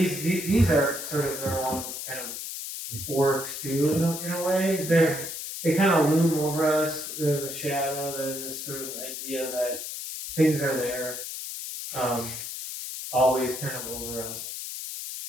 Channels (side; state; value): left; noise; hiss, 7 dB below the sound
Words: are sort of their own kind of works too, in a way, they kind of loom over us, the shadow, this sort of idea that things are there, always kind of over us.